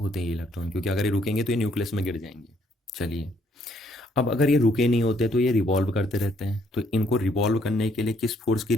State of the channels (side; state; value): both; normal; correlation 0.68